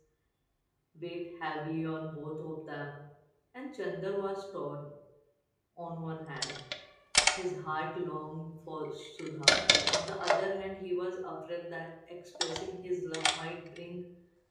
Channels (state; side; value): identical; both; correlation 1.00